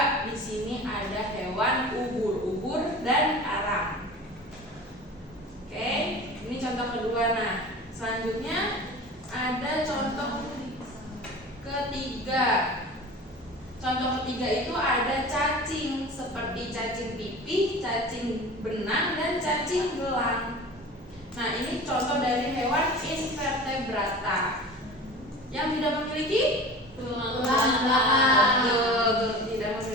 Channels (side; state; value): both; normal; correlation 0.37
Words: Di sini ada hewan ubur dan karang. Oke, ini contoh kedua. Nah, selanjutnya ada contoh ketiga. Contoh ketiga itu ada cacing seperti cacing pipih, cacing benang, dan cacing gelang. Nah, ini contoh dari hewan invertebrata yang tidak memiliki Tulang belakang. Tidak